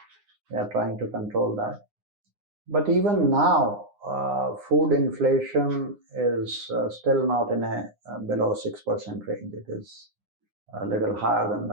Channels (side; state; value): left; late; 9.8 ms